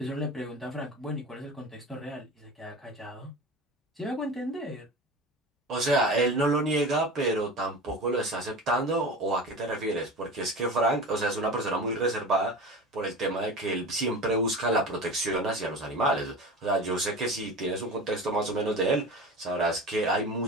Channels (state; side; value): normal; both; correlation 0.32